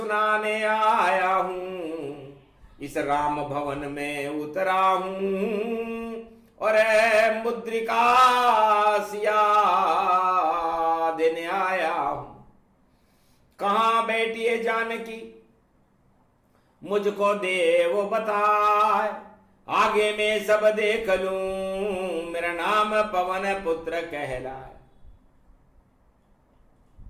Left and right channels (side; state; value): both; identical; correlation 1.00